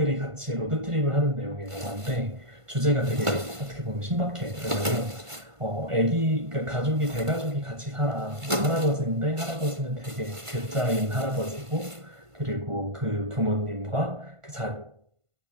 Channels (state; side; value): late; left; 1.5 ms